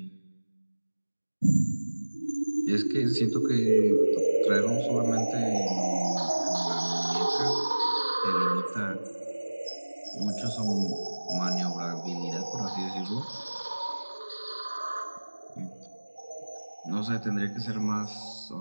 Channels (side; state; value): both; inverted; correlation -1.00